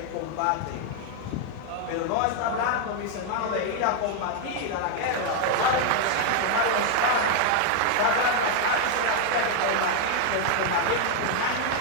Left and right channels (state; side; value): different; both; correlation 0.00